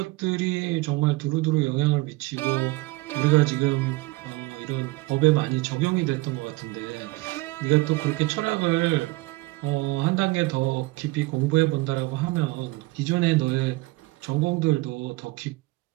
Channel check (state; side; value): quieter; left; 21.5 dB